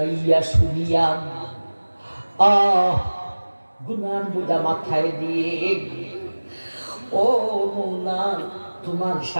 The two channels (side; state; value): both; inverted; correlation -1.00